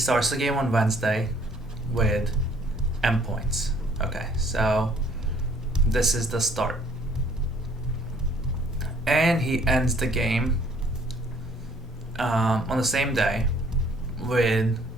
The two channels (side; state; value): both; normal; correlation 0.61